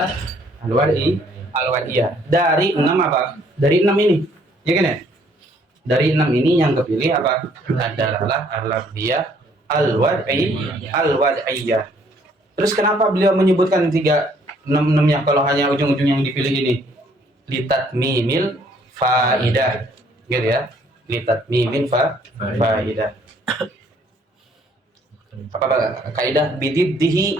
al-wad'iyah. Dari 6 apa? Dari 6 ini. Ya kan ya? Dari 6 ini yang kepilih apa? Ad-dalalah al-lafdhiyah al-wad'iyah. Terus kenapa beliau menyebutkan 6-nya kalau hanya ujung-ujung yang dipilih ini? Litatmimil faidah. Gitu ya. Litatmimil faidah. Apa kaidah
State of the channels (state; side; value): normal; both; correlation 0.63